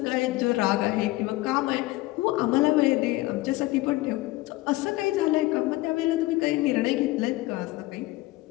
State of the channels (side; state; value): right; quieter; 19.2 dB